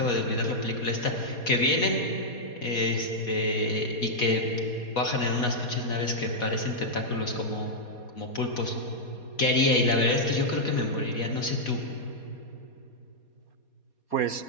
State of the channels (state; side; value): late; right; 4.2 ms